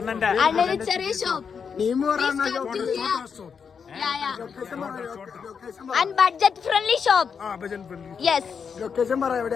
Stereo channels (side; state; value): right; quieter; 6.4 dB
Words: And budget friendly shop. Yes. Location പറ